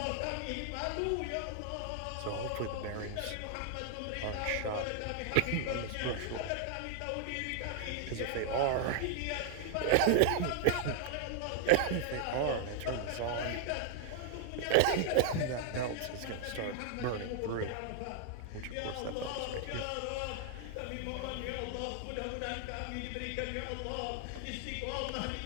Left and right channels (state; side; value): different; both; correlation 0.00